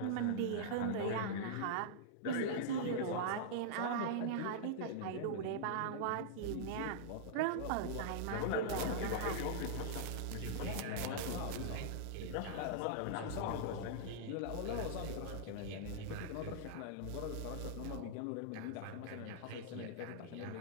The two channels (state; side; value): different; both; correlation -0.01